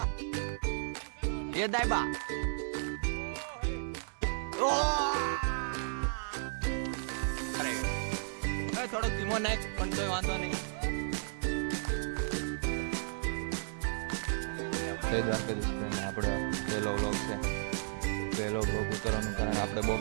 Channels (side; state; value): left; silent; 55 dB below the other